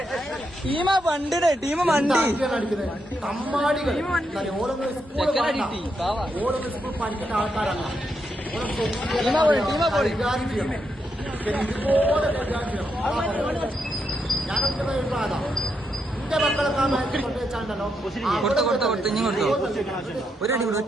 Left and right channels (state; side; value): normal; both; correlation 0.81